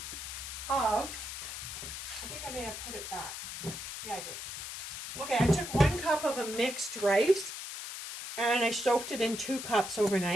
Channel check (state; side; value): noise; left; hiss, 8 dB below the sound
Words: of, I think I may have put it back. Yeah, I did. Okay, I took 1 cup of a mixed rice and I soaked it in 2 cups